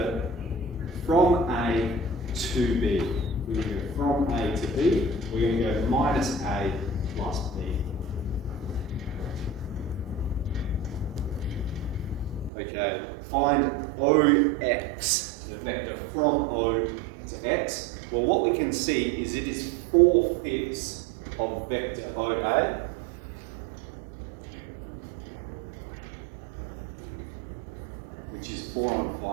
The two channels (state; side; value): drops out; left; at 12.5 s